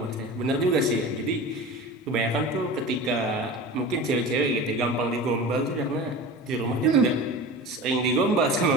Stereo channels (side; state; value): both; normal; correlation 0.33